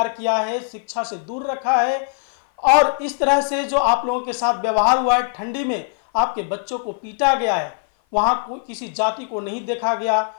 किया है, शिक्षा से दूर रखा है और इस तरह से जो आप लोगों के साथ व्यवहार हुआ है, ठंडी में आपके बच्चों को पीटा गया है, वहां कोई किसी जाति को नहीं देखा गया,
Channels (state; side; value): silent; right; 56 dB below the other